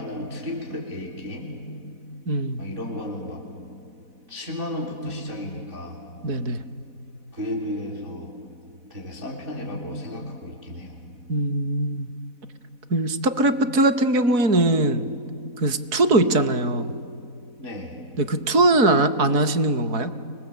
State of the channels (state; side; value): late; left; 4.1 ms